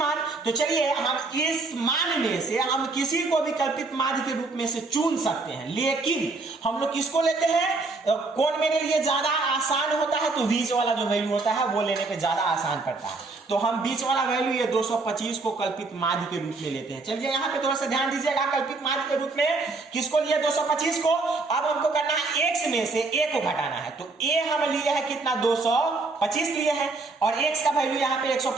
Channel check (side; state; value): left; quieter; 3.6 dB